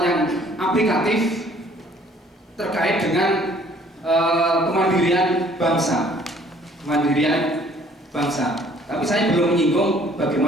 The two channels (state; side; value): normal; both; correlation 0.58